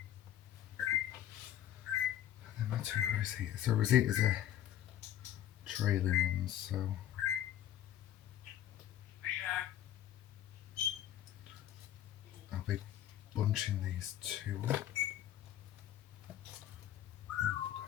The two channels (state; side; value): quieter; right; 11.6 dB